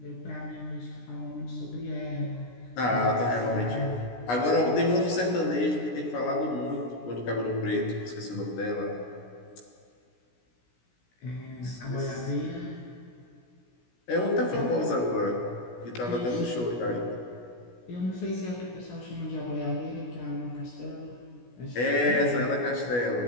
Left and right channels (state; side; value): late; right; 16 ms